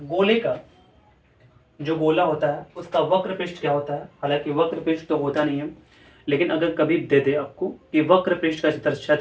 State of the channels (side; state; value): both; identical; correlation 1.00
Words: गोले का जो गोला होता है उसका वक्र पृष्ठ क्या होता है, हालांकि वक्र पृष्ठ तो होता नहीं है, लेकिन अगर कभी दे दे आपको कि वक्र पृष्ठ का